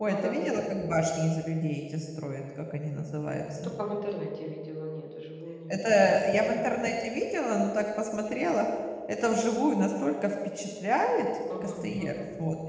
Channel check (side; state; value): both; identical; correlation 1.00